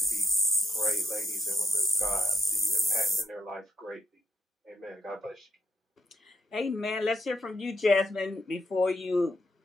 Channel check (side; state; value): both; normal; correlation 0.78